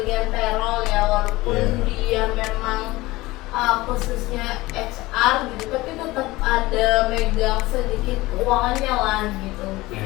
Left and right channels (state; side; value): quieter; right; 19.8 dB